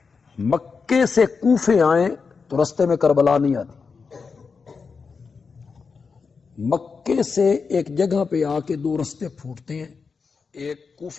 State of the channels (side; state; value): right; quieter; 5.1 dB